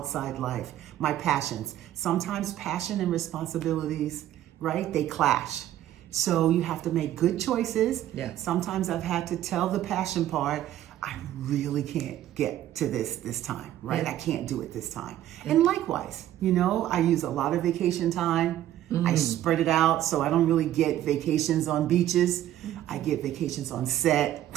life, my passions. Sometimes passion and responsibilities, right? They clash. So you have to make good choices. Yeah. Sometimes I've had to tell the passion part, I really can't get to this time, right? Yeah. I can't do it this time. And likewise, I use a lot of vacation time. I spread it out so I don't really get vacations on beaches. I get vacations on set.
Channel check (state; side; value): quieter; left; 12.7 dB